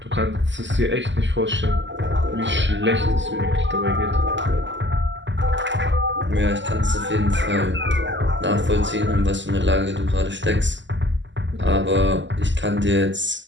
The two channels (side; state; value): left; late; 0.54 ms